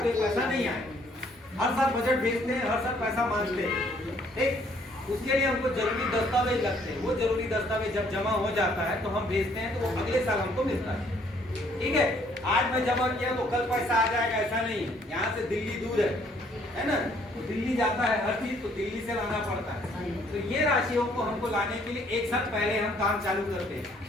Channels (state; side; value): normal; both; correlation 0.64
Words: ये पैसा नहीं आएगा। हर साल बजट भेजते हैं, हर साल पैसा मांगते हैं, ठीक, उसके लिए हमको जरूरी दस्तावेज लगते हैं। वो जरूरी दस्तावेज जब जमा हो जाता है तो हम भेजते हैं, तो वो अगले साल हमको मिलता है, ठीक है। आज मैं जमा किया तो कल पैसा आ जाएगा, ऐसा नहीं है। यहाँ से दिल्ली दूर है ना, तो दिल्ली जाता है हर चीज, तो दिल्ली से लाना पड़ता है। तो ये राशियों को हमको लाने के लिए एक साल पहले हम काम चालू करते हैं।